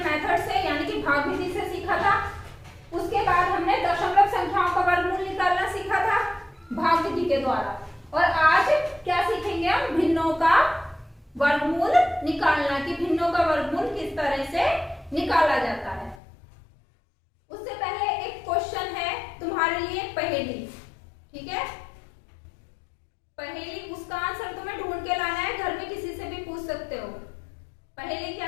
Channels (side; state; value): right; drops out; at 16.2 s